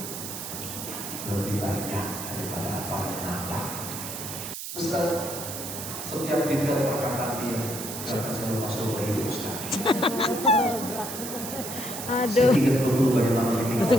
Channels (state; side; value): noise; right; hiss, 7 dB below the sound